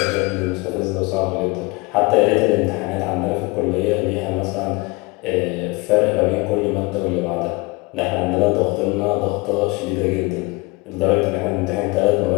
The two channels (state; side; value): quieter; right; 25.3 dB